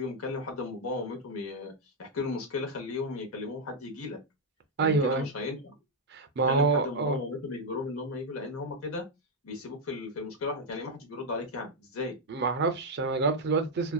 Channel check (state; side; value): normal; both; correlation 0.00